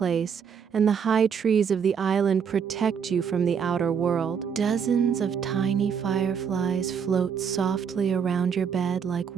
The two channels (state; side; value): quieter; left; 7.1 dB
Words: and the high trees of the island protect you from the outer world. Dozens of tiny fireflies float softly around your bed like